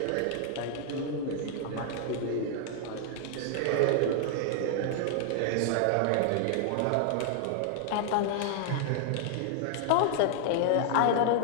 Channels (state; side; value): different; both; correlation 0.00